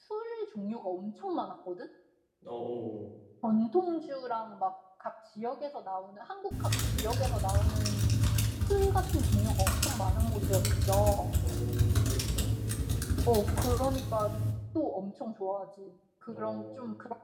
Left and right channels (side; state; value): both; identical; correlation 1.00